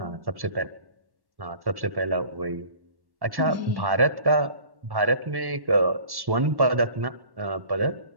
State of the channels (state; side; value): late; left; 1.1 ms